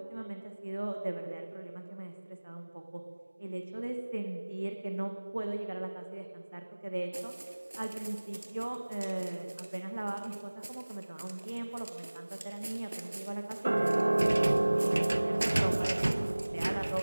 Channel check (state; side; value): inverted; both; correlation -1.00